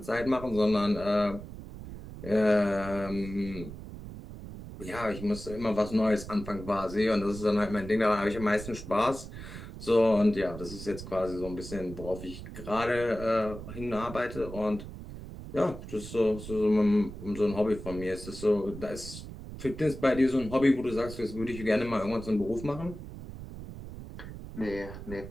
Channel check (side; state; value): right; noise; rumble, 12 dB below the sound